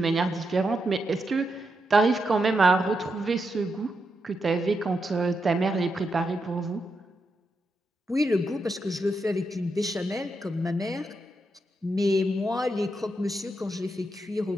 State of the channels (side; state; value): both; normal; correlation 0.84